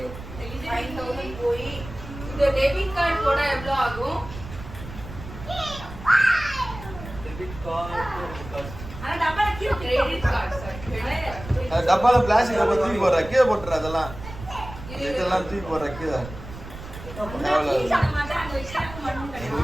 5000 போய் இந்த டெபிட் கார்டு போட எவ்வளவு ஆகும்? ஆனா டப்பால கீழ கிரெடிட் கார்டு சார். டப்பால பிளாஸ்டிக் டப்பா தூக்கி போடுற கீழே போட்டுற. அதெல்லாம் இதெல்லாம் தூக்கி போடுற கீழே.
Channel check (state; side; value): noise; right; rumble, 13 dB below the sound